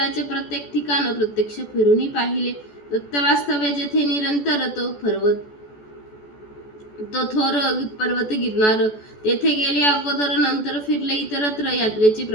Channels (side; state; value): right; late; 14 ms